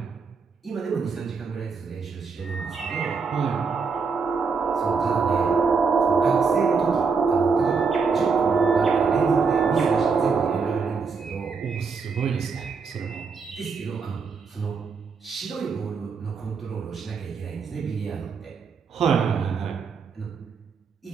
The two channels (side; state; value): left; quieter; 5.2 dB